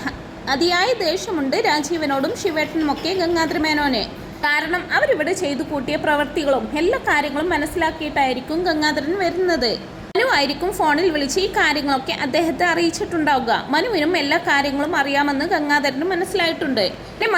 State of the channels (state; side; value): identical; both; correlation 1.00